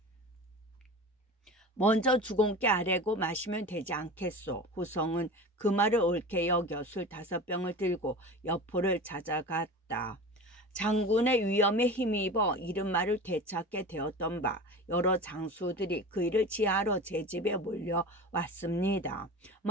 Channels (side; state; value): both; normal; correlation 0.33